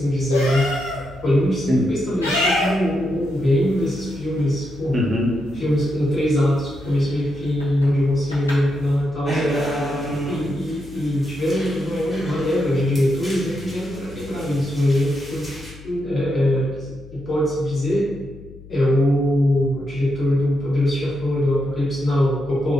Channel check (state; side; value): noise; left; hum, 19 dB below the sound